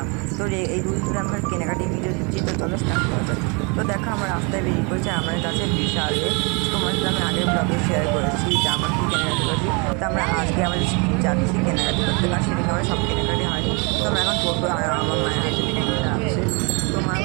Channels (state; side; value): quieter; left; 31.8 dB